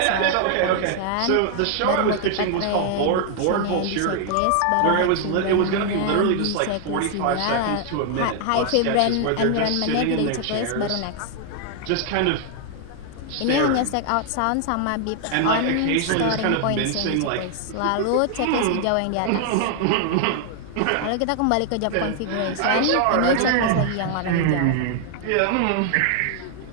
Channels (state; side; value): different; both; correlation 0.00